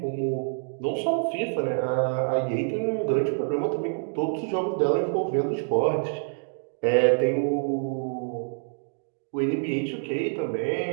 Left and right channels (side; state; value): left; silent; digital silence